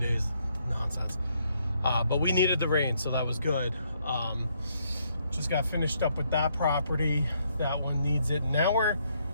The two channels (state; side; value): inverted; both; correlation -0.72